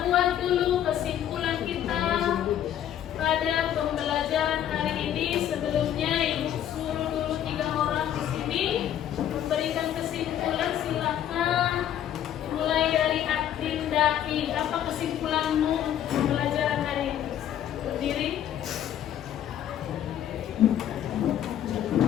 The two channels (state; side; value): quieter; right; 10.7 dB